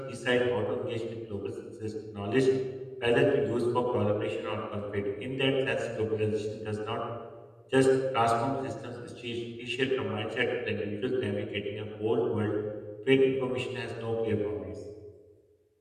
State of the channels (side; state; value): both; identical; correlation 1.00